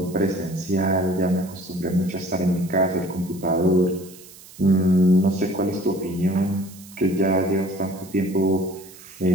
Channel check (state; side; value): noise; right; hiss, 20 dB below the sound